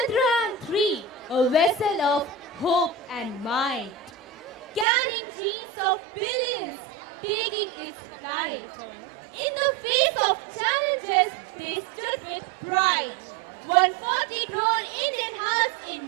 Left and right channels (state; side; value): drops out; left; at 4.9 s